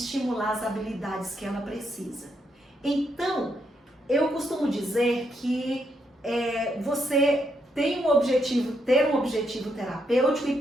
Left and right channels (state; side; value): normal; both; correlation 0.78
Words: as habilidades que ela precisa. Então, eu costumo dizer que você tem um objetivo, ter um objetivo terapêutico e